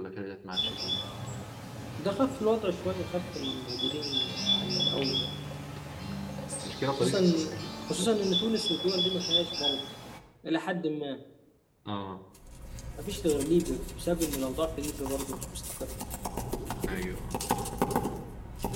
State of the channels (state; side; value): identical; both; correlation 1.00